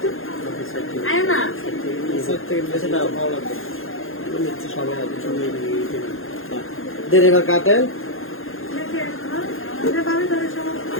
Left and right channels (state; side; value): late; right; 0.60 ms